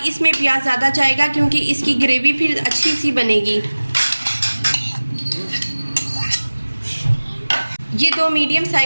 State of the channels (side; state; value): both; inverted; correlation -1.00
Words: इसमें प्याज ज़्यादा जाएगा क्योंकि इसकी ग्रेवी फिर अच्छी सी बनेगी। ये 2 मीडियम